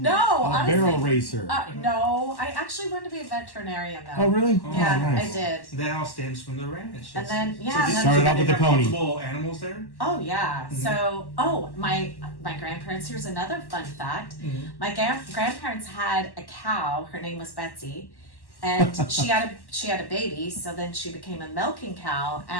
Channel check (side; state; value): right; late; 1.1 ms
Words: A honestly. barrel racer. No, I actually wanted to be a veterinarian though. Oh, really? Yeah, Oh, nice. I did. that all stems from the ranch. And then So yeah, this- and then, Started off with they the have pony. multiple animals there. oh yeah. So my grandparents. Here's another fun fact. My grandparents had a cow. Her name was Betsy. And she had a baby, so then she became a milking cow,